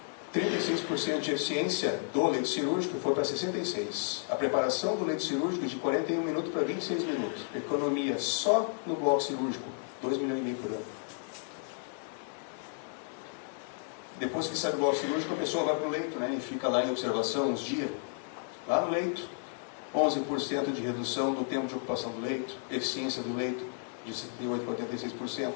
36% de eficiência do leito cirúrgico foi para 66%. A preparação do leito cirúrgico de 41 minutos para 26 minutos. Economia só no bloco cirúrgico, 2,5 milhões por ano. Depois que sai do bloco cirúrgico, a pessoa vai para o leito, né, e fica lá em observação uns dias. Lá no leito, 11% de redução do tempo de ocupação do leito, eficiência do leito de 78% para 86%,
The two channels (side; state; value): right; silent; 56 dB below the other